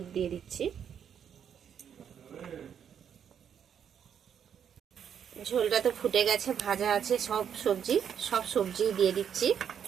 দিয়ে দিচ্ছি। ঝোলটা তো ফুটে গেছে, ভাজা আছে সব সবজি দিয়ে দিচ্ছি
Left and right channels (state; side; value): quieter; left; 8.3 dB